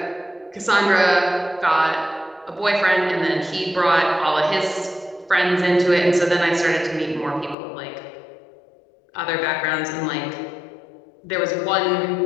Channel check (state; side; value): drops out; right; at 7.6 s